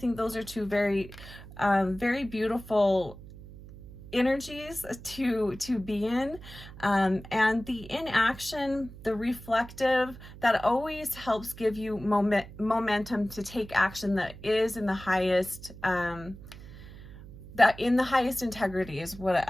those are two very beautiful energies to be in, and the inaction, the reflective, that always helps give you momentum to take action that is in the highest integrity is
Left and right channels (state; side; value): noise; right; hum, 16 dB below the sound